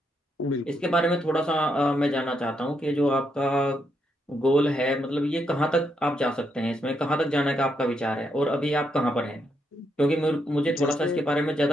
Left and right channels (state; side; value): normal; both; correlation 0.79